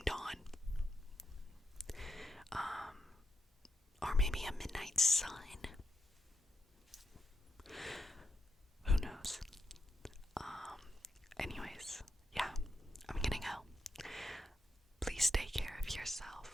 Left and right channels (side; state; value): both; normal; correlation 0.84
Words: dawn. Or maybe a midnight sun. Who knows? Anyways, yeah, I'm gonna go. Please take care of